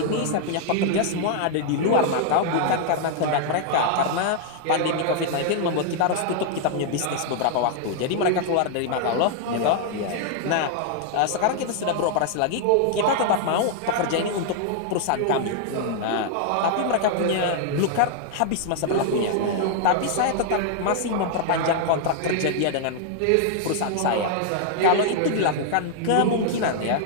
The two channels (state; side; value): different; both; correlation 0.00